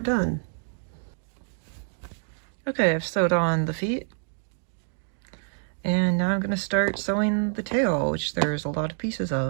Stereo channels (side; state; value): left; silent; digital silence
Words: done. Okay, I've sewed on the feet, and now I'm going to start sewing the tail, which there's a lot of pieces